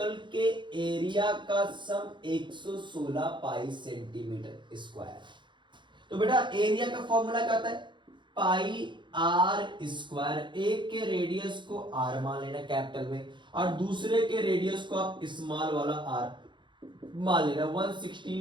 के एरिया का सम 116 पाई सेंटीमीटर स्क्वायर। तो बेटा एरिया का फॉर्मूला क्या होता है, पाई आर स्क्वायर। एक के रेडियस को आर मान लेना कैपिटल में और दूसरे के रेडियस को आप स्मॉल वाला आर मान लेना,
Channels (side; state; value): left; late; 0.23 ms